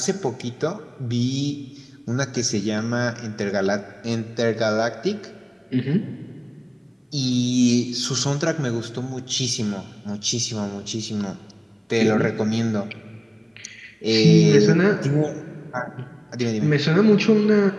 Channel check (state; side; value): identical; both; correlation 1.00